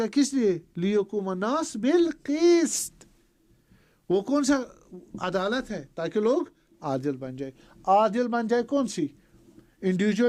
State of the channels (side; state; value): both; identical; correlation 1.00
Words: کس لیے؟ لیقوم الناس بالقسط. وہ کون سا عدالت ہے؟ تاکہ لوگ عادل بن جائے. عادل بن جائے کون سی؟